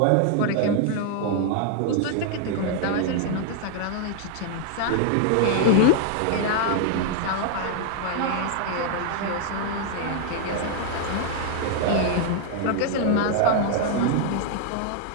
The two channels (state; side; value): different; both; correlation 0.00